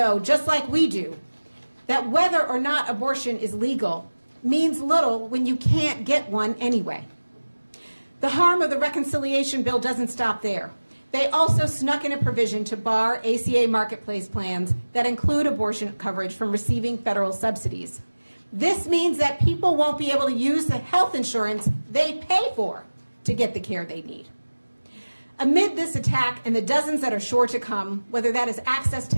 just like we do, that whether or not abortion is legal means little when you can't get one anyway. The harm of the reconciliation bill doesn't stop there. They also snuck in a provision to bar ACA marketplace plans that include abortion coverage from receiving federal subsidies. This means that people won't be able to use the health insurance they pay for to get the care they need. Amid this attack and the dozens that are sure to come, whether that is access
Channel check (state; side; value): inverted; both; correlation -1.00